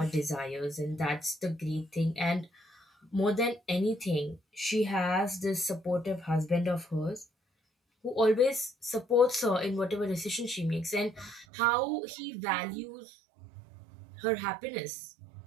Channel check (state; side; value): drops out; left; at 11.5 s